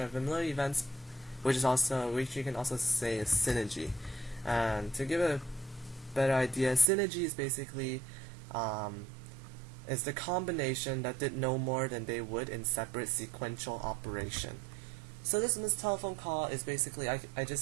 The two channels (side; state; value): left; drops out; at 6.9 s